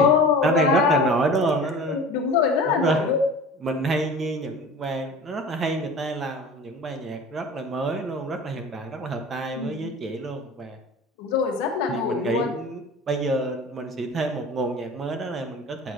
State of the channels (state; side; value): normal; both; correlation 0.39